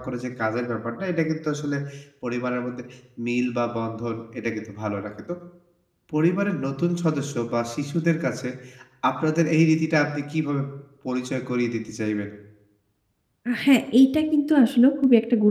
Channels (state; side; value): identical; both; correlation 1.00